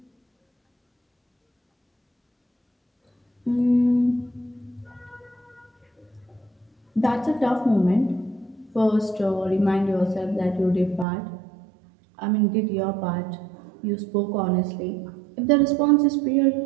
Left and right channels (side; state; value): left; drops out; at 11.1 s